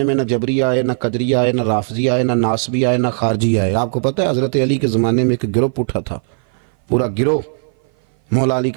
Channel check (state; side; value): silent; left; 57 dB below the other